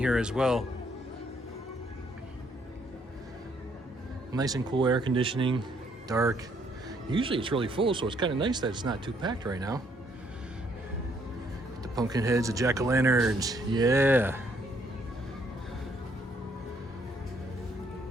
as well. Nice and cool air conditioning, dark. Usually it's really full, so it's kind of nice that it's not too packed right now. The pumpkin heads, the jack-o'-lanterns, yeah.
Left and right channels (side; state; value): both; normal; correlation 0.69